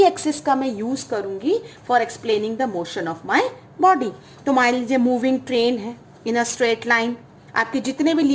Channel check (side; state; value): both; identical; correlation 1.00